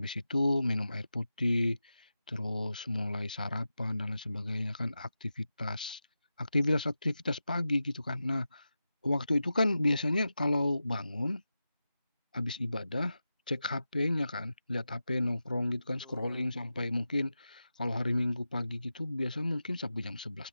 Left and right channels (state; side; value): inverted; both; correlation -0.92